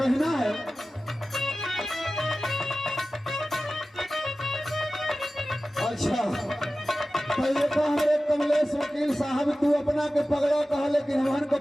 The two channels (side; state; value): both; normal; correlation 0.95